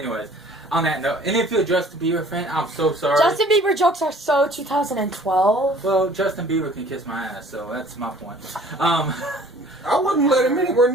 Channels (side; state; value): both; normal; correlation 0.52